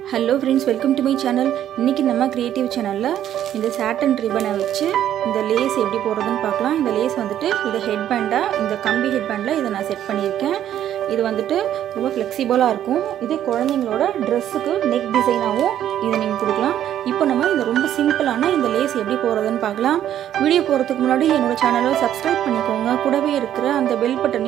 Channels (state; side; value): quieter; left; 11.0 dB